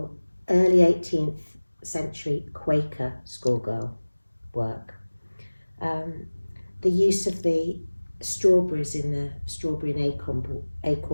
early 18th century Quaker schoolgirl work. The use of the strawberries in the strawberry and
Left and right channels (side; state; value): both; inverted; correlation -1.00